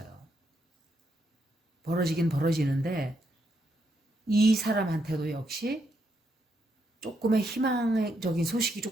벌어지긴 벌어지는데 이 사람한테도 역시 조금의 희망적인 소식이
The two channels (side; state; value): both; normal; correlation 0.78